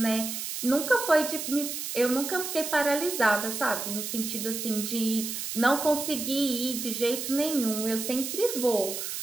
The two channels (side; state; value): right; noise; hiss, 5 dB below the sound